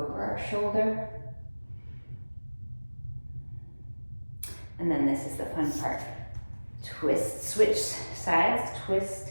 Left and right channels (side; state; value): both; inverted; correlation -1.00